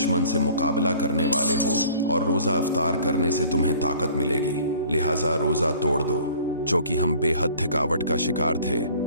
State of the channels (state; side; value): inverted; both; correlation -0.50